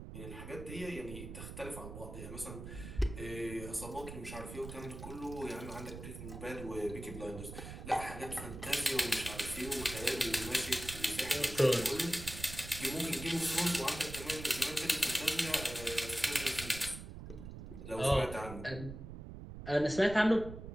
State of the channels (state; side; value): noise; right; rumble, 10 dB below the sound